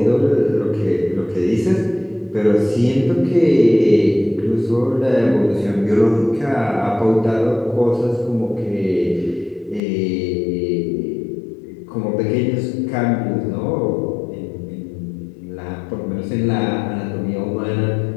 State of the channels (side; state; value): right; drops out; at 9.8 s